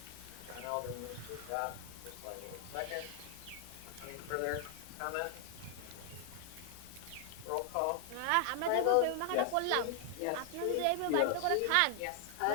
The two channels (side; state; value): both; different; correlation 0.00